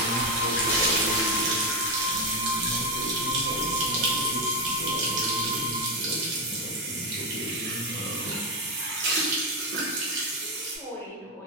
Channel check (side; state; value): both; normal; correlation 0.08